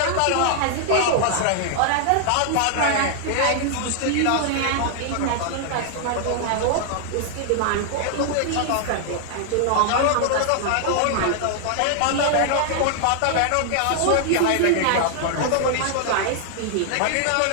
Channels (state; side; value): different; both; correlation 0.00